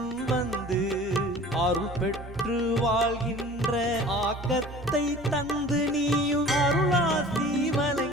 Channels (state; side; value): normal; both; correlation 0.44